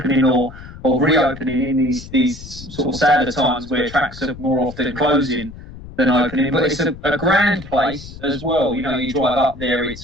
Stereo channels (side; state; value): left; noise; rumble, 15 dB below the sound